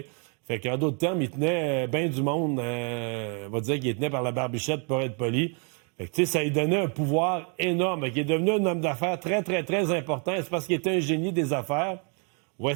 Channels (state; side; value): quieter; left; 38.0 dB